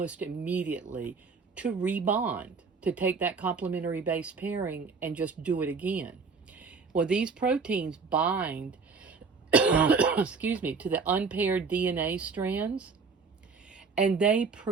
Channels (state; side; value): quieter; left; 4.9 dB